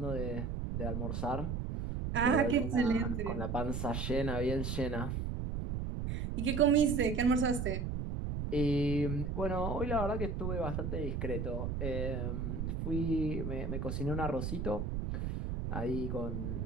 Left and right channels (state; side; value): noise; right; rumble, 2 dB below the sound